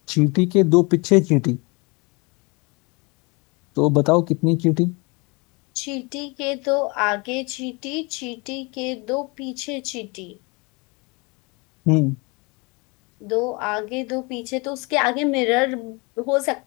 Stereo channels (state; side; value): quieter; right; 28.4 dB